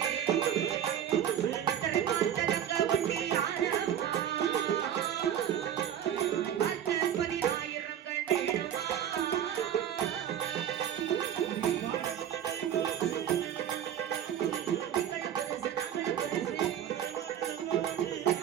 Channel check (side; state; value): left; quieter; 9.9 dB